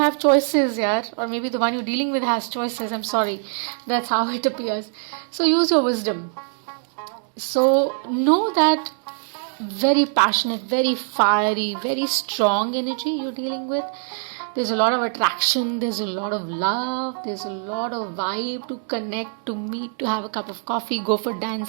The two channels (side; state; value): left; silent; 60 dB below the other